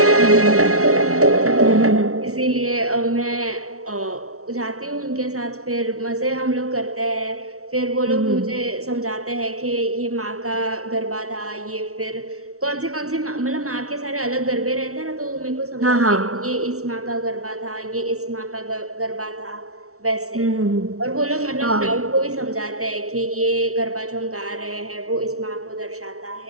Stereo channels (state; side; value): late; left; 0.64 ms